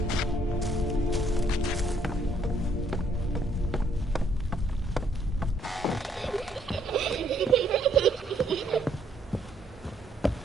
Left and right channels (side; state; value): both; normal; correlation 0.69